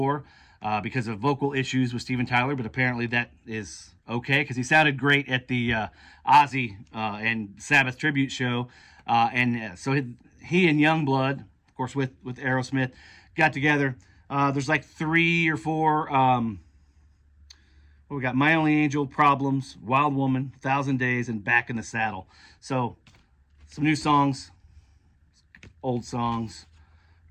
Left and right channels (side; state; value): both; identical; correlation 1.00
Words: because of vocal issues with Steven Tyler. But apparently that is okay, because he sounded great at the Ozzy and Sabbath tribute show. So he and Youngblood, of course, with Aerosmith, got together. There's like 3 or 4. We got My Only Angel, Problems, Wild Woman, 1,000 Days, and Back in the Saddle. So some new songs, old songs.